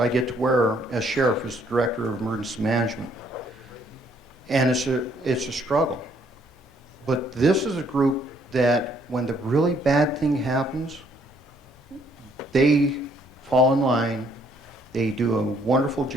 get to wear as sheriff, as the director of emergency management. And it's a struggle. But this is a group that when the really bad thing happens, they fall in line. They do a wonderful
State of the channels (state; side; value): normal; both; correlation 0.66